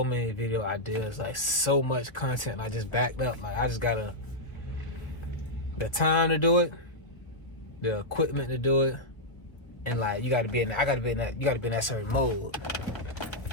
many video ideas, like so much content. I just backed up. Like, I just gotta the time to do it, the equipment to do it, and like you gotta be in that. You gotta be in that certain mode.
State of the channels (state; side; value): late; right; 1.1 ms